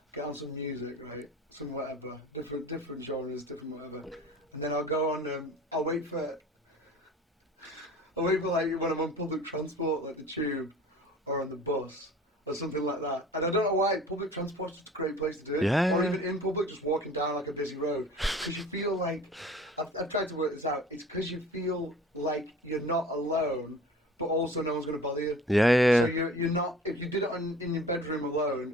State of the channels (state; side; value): normal; both; correlation 0.44